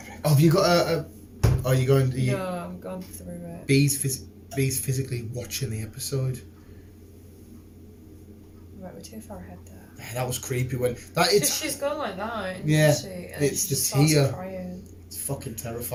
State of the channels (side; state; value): both; identical; correlation 1.00